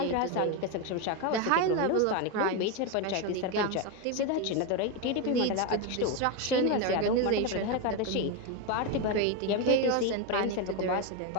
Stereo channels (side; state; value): both; different; correlation 0.03